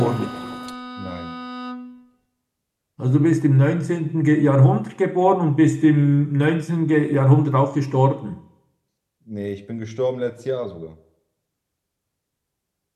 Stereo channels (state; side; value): identical; both; correlation 1.00